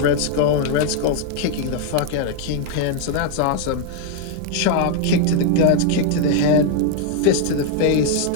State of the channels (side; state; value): both; different; correlation 0.00